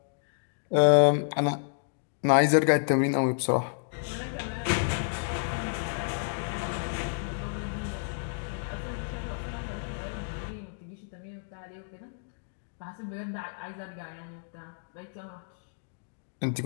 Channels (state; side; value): silent; right; digital silence